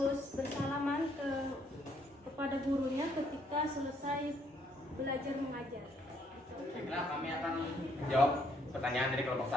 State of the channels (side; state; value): both; normal; correlation 0.69